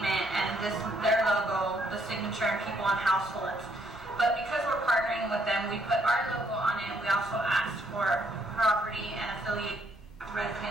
and their logo, the signature, and people on households. But because we're partnering with them, we put our logo on it. We also asked for property and affiliate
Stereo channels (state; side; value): normal; both; correlation 0.70